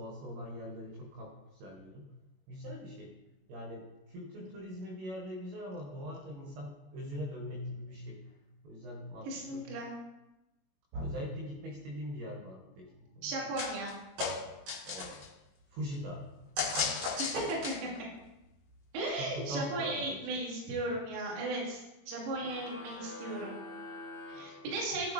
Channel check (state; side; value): late; left; 21 ms